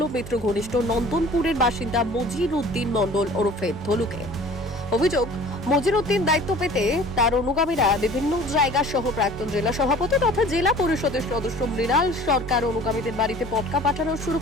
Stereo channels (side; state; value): both; normal; correlation 0.47